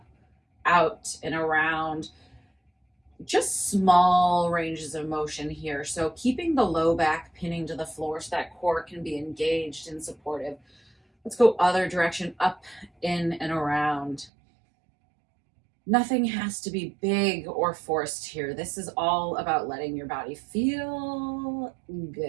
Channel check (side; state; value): left; drops out; at 14.3 s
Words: out, and around. Just small ranges of motion here. So keeping the low back pinning to the floor so that core can be engaged and supportive. Let's go other direction, up, in, and around. Nothing has to be big or forced here. This is all about letting your body feel